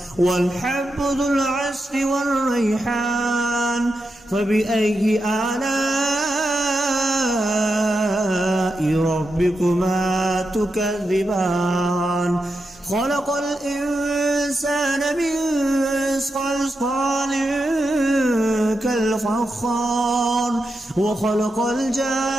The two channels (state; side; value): normal; both; correlation 0.87